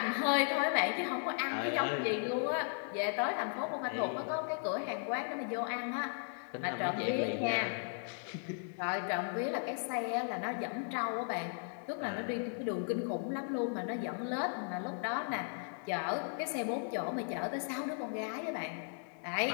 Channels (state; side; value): silent; right; 53 dB below the other